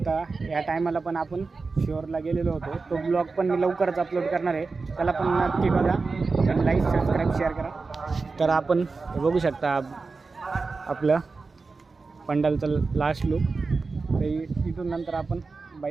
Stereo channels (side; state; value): left; quieter; 4.2 dB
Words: या टायमाला पण आपण शिवरला गेलेलो होतो, तो ब्लॉग पण मी लवकरच अपलोड करणार आहे. त्याला पण नक्की बघा आणि लाईक सबस्क्राईब शेअर करा. तर आपण बघू शकता आपलं पंडालचं लास्ट लुक. तर इथून नंतर आपण